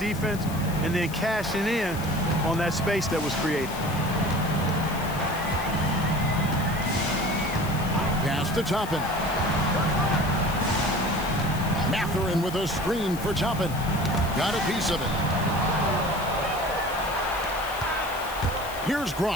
and then cashing in on that space that was created. Pass to Toppin. Mathurin with a screen for Toppin. Got a piece of it. Here's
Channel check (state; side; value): noise; left; hiss, 14 dB below the sound